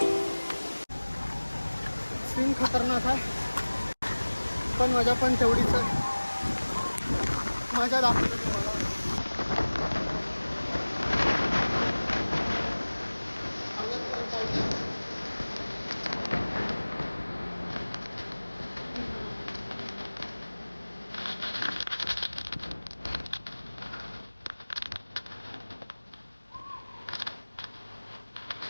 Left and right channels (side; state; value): both; inverted; correlation -1.00